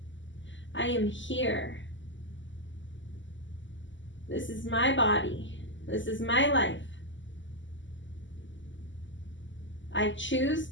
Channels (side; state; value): right; late; 0.54 ms